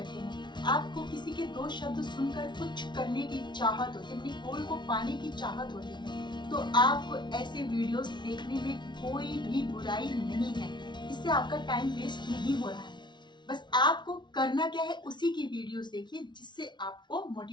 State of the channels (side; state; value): right; late; 0.22 ms